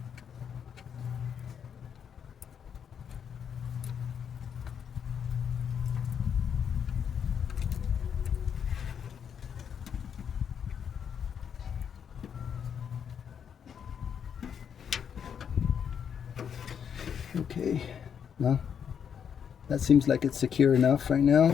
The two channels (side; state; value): right; quieter; 7.8 dB